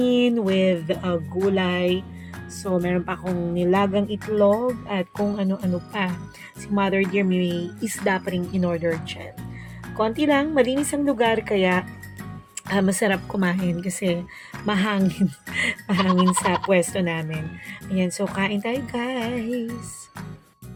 with gulay. So, meron pa akong nilagang itlog at kung ano-ano pa. Si Mother Dear may isda pa rin in-order dyan. Konti lang, malinis ang lugar kaya masarap kumain kasi mahangin, mahangin sa pwesto namin. Ayan, so kain tayo guys.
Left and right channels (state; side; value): identical; both; correlation 1.00